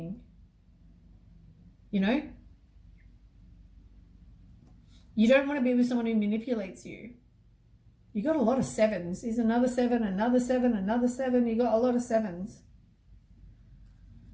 You know? You don't want to be with someone who manipulates you. You got a lot of 7s. There's another 7, another 7, another 7. You got a lot of 7s.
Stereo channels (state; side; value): identical; both; correlation 1.00